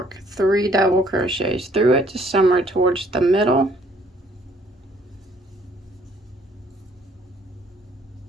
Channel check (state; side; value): normal; both; correlation 0.62